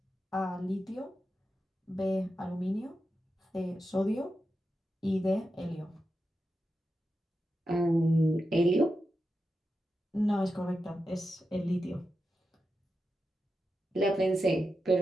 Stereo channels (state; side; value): normal; both; correlation 0.89